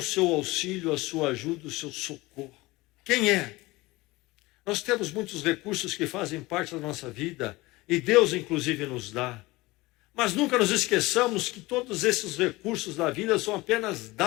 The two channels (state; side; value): quieter; right; 20.9 dB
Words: seu auxílio, a sua ajuda, o seu socorro? Quem é? Nós temos muitos recursos que fazem parte da nossa vida, e Deus inclusive nos dá. Mas nunca nos esqueçamos que todos esses recursos da vida são apenas